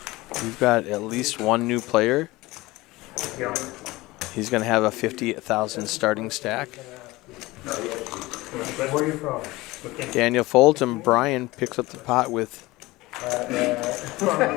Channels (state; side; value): quieter; right; 20.2 dB